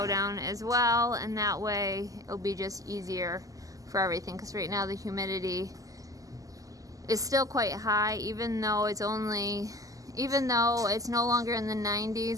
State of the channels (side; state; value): left; late; 0.17 ms